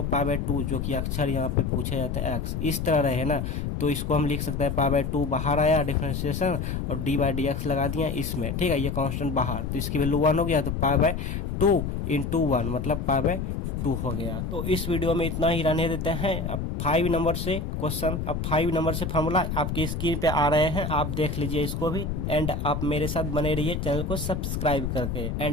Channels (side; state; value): left; noise; rumble, 3 dB below the sound